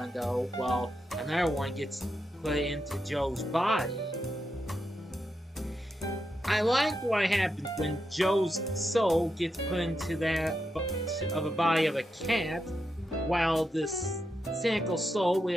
though, while another one gets put into Joe's body. I like what happens when Joe's soul gets put into that of a body of a cat, while this cynical soul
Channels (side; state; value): both; normal; correlation 0.86